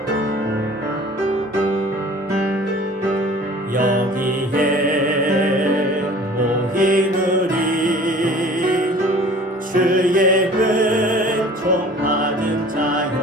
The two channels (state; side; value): normal; both; correlation 0.47